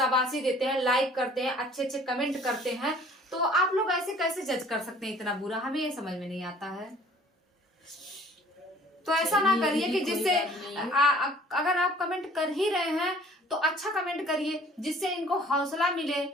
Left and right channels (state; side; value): normal; both; correlation 0.53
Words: देते हैं, लाइक करते हैं, अच्छे अच्छे कमेंट करते हैं। तो आप लोग ऐसे कैसे जज कर सकते हैं इतना बुरा? हमें ये समझ में नहीं आता है। तो ऐसा ना करिए कि जिससे अगर आप कमेंट कर ही रहे हैं तो अच्छा कमेंट करिए जिससे इनको हौसला मिले,